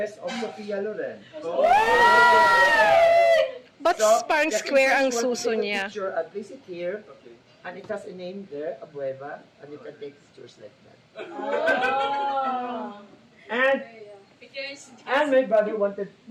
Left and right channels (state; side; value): identical; both; correlation 1.00